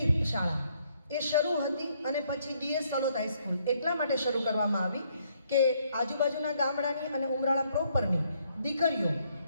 શાળા એ શરૂ હતી, અને પછી DS સલોદ હાઈસ્કૂલ એટલા માટે શરૂ કરવામાં આવી કે આજુબાજુના ગામડાની અને ઉમરાળા પ્રોપરની દીકરીઓ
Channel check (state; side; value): inverted; both; correlation -0.70